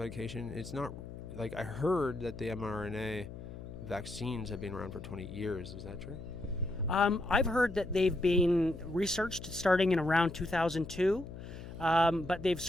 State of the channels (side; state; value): left; noise; hum, 12 dB below the sound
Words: it's not, like, I heard that the mRNA vaccines have been around for 20 years. Is that true? I've heard that they've been researched starting in around 2002, but they've